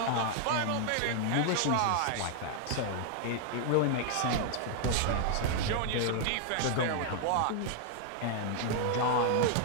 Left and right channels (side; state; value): both; different; correlation 0.00